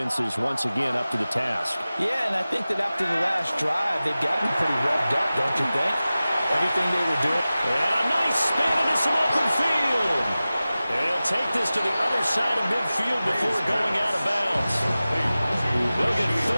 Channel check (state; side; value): inverted; both; correlation -0.96